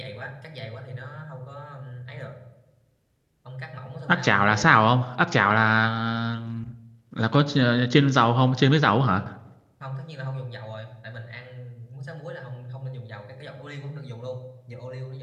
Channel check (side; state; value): both; identical; correlation 1.00